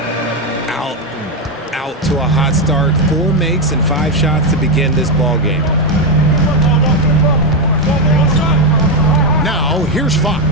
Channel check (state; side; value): normal; both; correlation 0.07